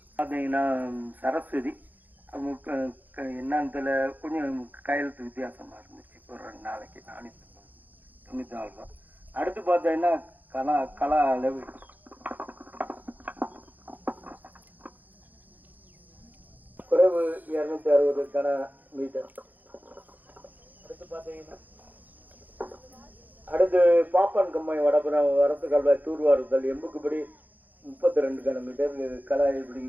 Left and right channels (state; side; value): late; left; 0.083 ms